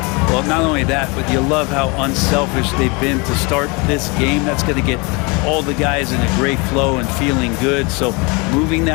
Well, not only that, but you love how unselfish they've been to start this game. That's going to get all the guys in a great flow and feeling good. So moving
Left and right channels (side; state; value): right; quieter; 28.7 dB